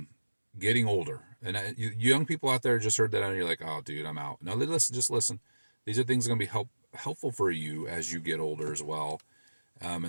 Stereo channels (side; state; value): both; inverted; correlation -1.00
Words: getting older. And you young people out there just heard that and you're like, oh, dude, I'm out. No, listen, just listen. These are things that are going to be helpful for you as you get older as well.